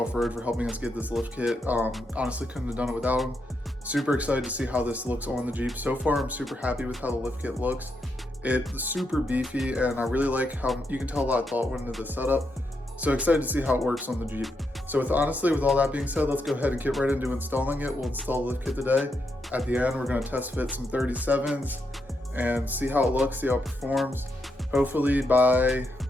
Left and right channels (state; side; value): normal; both; correlation 0.82